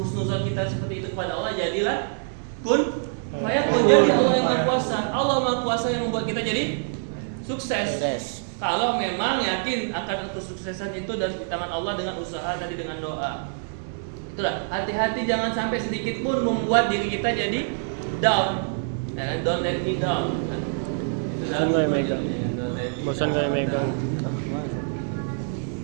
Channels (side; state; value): left; silent; digital silence